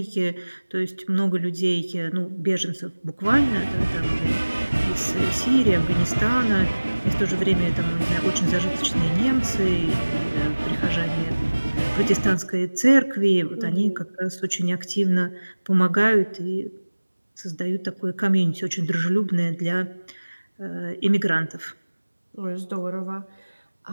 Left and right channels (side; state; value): both; inverted; correlation -1.00